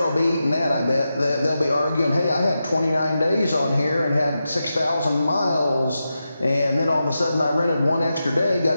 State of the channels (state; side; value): inverted; both; correlation -0.90